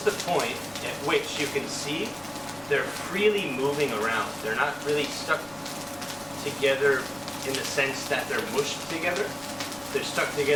the point at which you can see they're freely moving around. They're not really stuck together in the sense that they're mushed together. They're stuck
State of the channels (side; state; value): left; noise; rumble, 26 dB below the sound